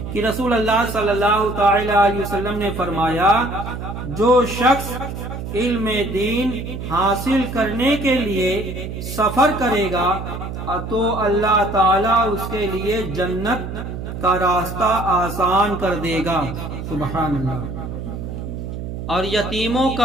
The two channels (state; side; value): noise; right; hum, 7 dB below the sound